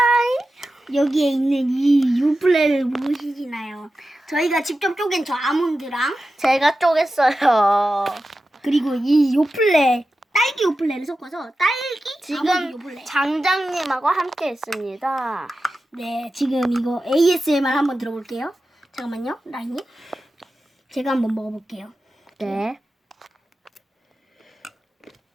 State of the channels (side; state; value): both; normal; correlation 0.92